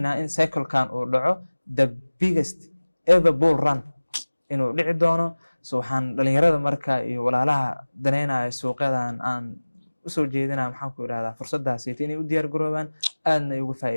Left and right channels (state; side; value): inverted; both; correlation -1.00